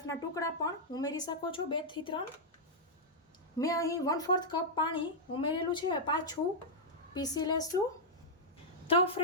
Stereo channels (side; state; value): both; normal; correlation -0.06